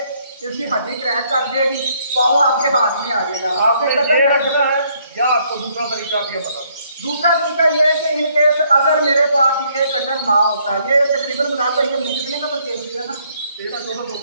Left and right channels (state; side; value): inverted; both; correlation -0.68